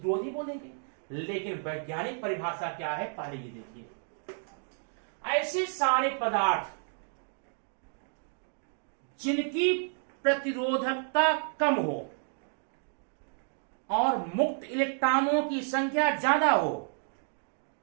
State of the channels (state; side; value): silent; left; 57 dB below the other